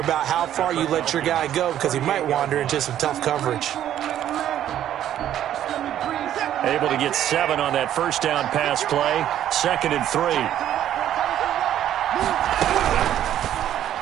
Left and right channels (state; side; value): quieter; left; 11.3 dB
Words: how far you let your guy go because he might wander into some tough coverage. Able to get 7 on that first down pass play. 2nd and 3.